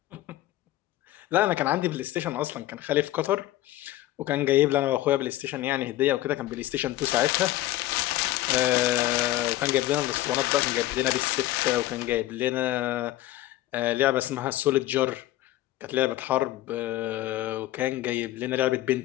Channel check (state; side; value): quieter; right; 15.4 dB